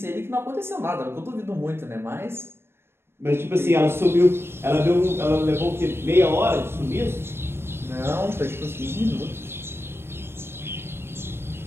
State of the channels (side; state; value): left; late; 0.12 ms